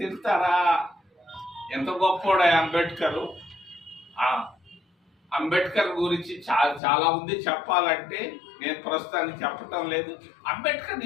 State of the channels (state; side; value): drops out; right; at 6.8 s